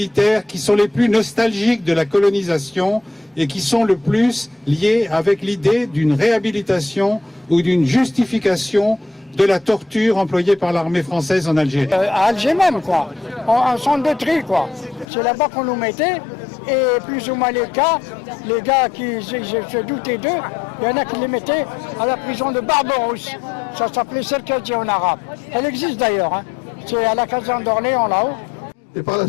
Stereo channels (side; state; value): right; drops out; at 15.1 s